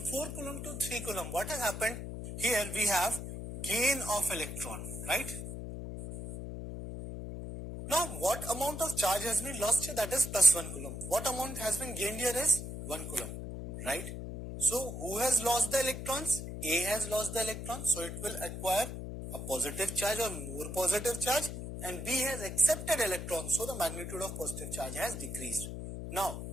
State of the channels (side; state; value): left; noise; hum, 7 dB below the sound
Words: 4 coulomb to 3 coulomb, what has happened? Here we have gain of electron, right? Now, what amount of charge has been lost here? That is plus 1 coulomb. What amount has been gained here is 1 coulomb, right? So, who has lost the electrons? A has lost the electrons, so it will acquire a positive charge or more positive charge, and B has accepted electrons, so the magnitude of positive charge has decreased. Now,